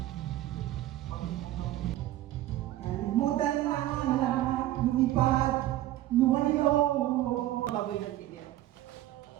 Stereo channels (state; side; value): quieter; left; 14.5 dB